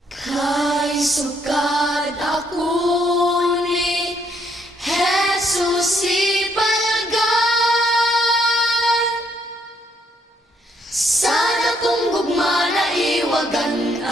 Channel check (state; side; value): normal; both; correlation 0.71